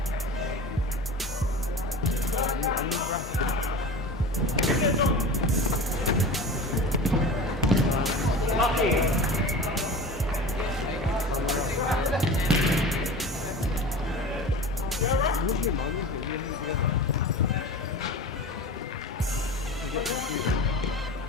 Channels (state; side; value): normal; both; correlation 0.33